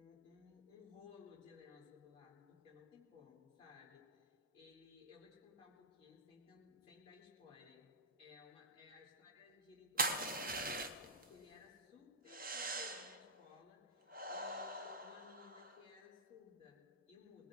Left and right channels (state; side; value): normal; both; correlation -0.11